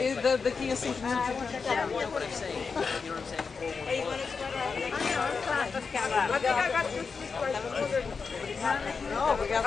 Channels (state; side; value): quieter; right; 5.1 dB